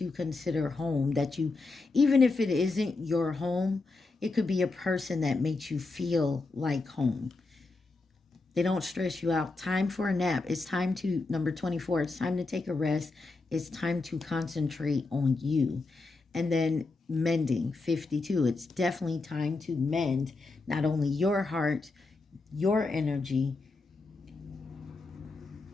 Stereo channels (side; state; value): right; quieter; 3.6 dB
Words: consider home, that you, even if it isn't your home, it could be a person that makes you feel like home. They don't stress you out. Time for a nap. It's time to, number 24, it's time to take a rest. It's time to concentrate on you. And then mending, 52. It's definitely time to mend not only your heart, your energy.